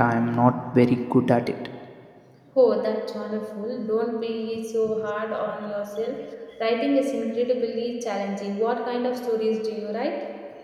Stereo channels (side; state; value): both; identical; correlation 1.00